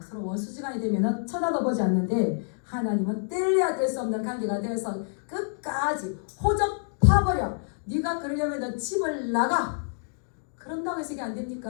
서로 원수지간이 되면 쳐다도 보지 않는데 하나님은 뗄래야 뗄 수 없는 관계가 되어서 끝까지 호적 파버려. 네가 그러려면 집을 나가. 그런다고 해서 이게 안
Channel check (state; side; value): silent; right; digital silence